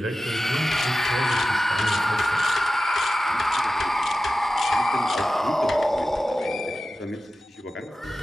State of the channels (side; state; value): both; normal; correlation 0.95